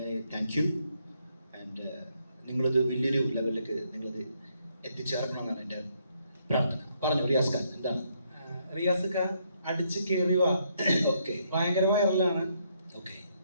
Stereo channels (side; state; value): both; inverted; correlation -0.73